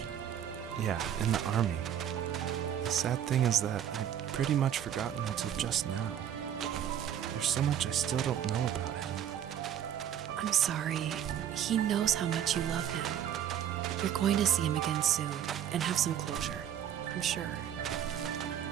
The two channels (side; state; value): left; quieter; 9.8 dB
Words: Yeah, in the army. The sad thing is that I'd pretty much forgotten until just now. There's so much I still don't know about him. I'm sorry. He knows how much you love him. You're going to see him again soon and have some closure, I'm sure.